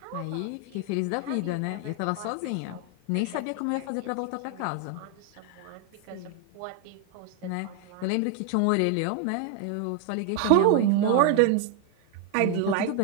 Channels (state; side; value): different; both; correlation 0.00